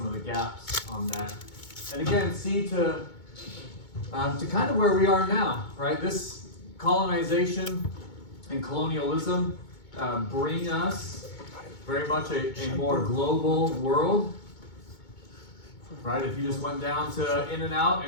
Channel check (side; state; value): right; late; 2.2 ms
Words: of the gaps on that. And again, see to kind of where we are now, right? This colonization and colonialism bring us very much a more global world, right? If you just went down to In-N-Out